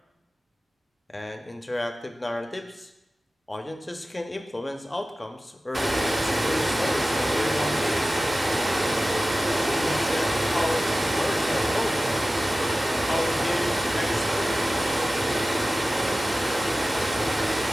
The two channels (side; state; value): both; normal; correlation 0.96